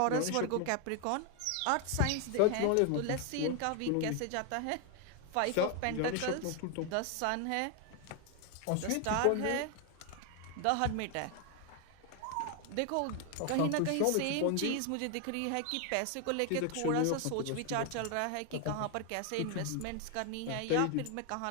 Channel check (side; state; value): both; different; correlation 0.01